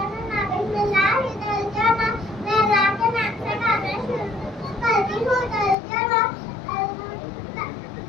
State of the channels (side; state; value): right; drops out; at 5.8 s